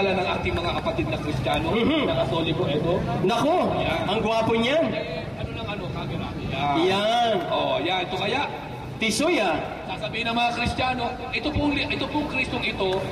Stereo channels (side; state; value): both; identical; correlation 1.00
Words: ng ating mga kapatid na Kristiyano, na Katoliko, ito. Nako! Ang gwapo niyan. Ano ng camera? Yan. Oh, yan. Ito kaya, Tisoy ah. sasabihin ng mga Kristiyano, ito pong Kristong ito